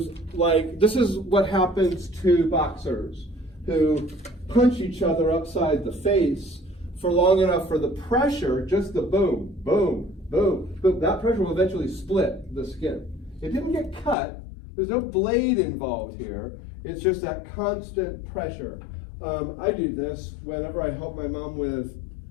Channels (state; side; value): drops out; right; at 14.2 s